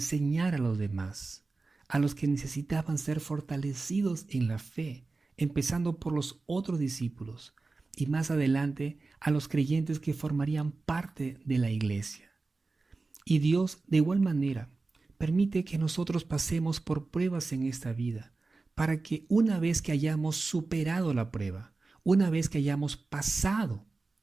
a los demás, a los que necesitaban ser fortalecidos en la fe, empezando por los otros discípulos y más adelante a los creyentes que formarían parte de la iglesia. Y Dios, de igual manera, permite que nosotros pasemos por pruebas en esta vida, para que una vez que hayamos superado la prueba, una vez que hayamos pasado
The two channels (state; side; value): quieter; left; 3.7 dB